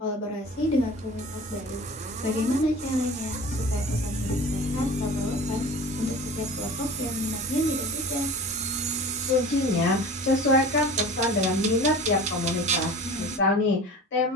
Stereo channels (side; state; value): both; normal; correlation 0.38